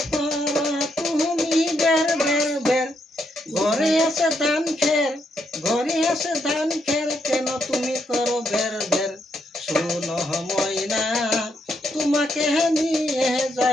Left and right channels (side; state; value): both; normal; correlation 0.78